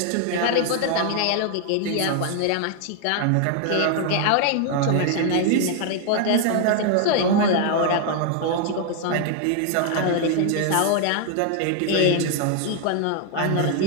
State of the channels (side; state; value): both; different; correlation 0.00